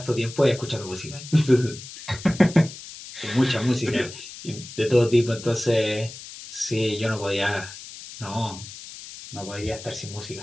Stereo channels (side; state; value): left; noise; hiss, 14 dB below the sound